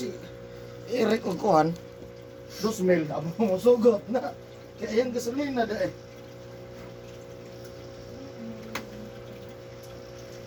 Eric Okohan. 2,000, abo mo sugot na. Kaya yung gasolina da eh.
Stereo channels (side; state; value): both; identical; correlation 1.00